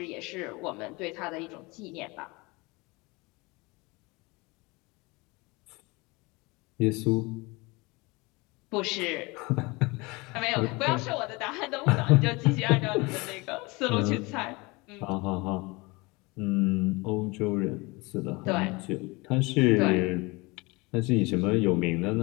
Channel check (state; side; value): quieter; right; 25.2 dB